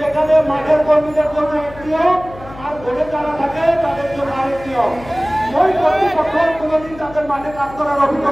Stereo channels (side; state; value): left; noise; hum, 17 dB below the sound